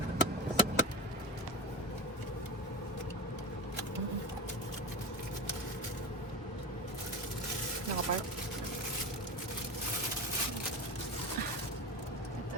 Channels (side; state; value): both; normal; correlation 0.24